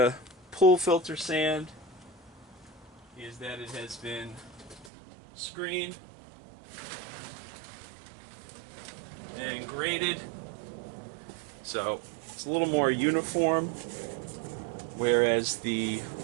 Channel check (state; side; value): drops out; left; at 4.9 s